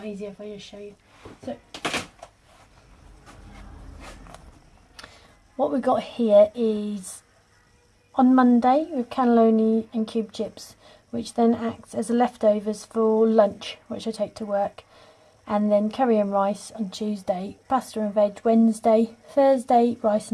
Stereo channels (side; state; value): both; identical; correlation 1.00